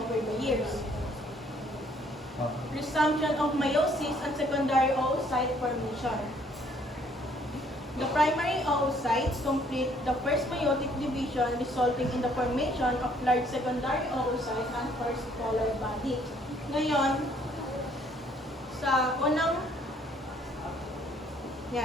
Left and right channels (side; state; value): both; normal; correlation 0.63